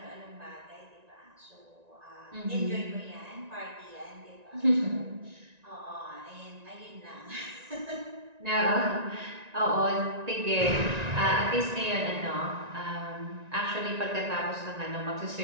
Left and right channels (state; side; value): late; left; 1.9 ms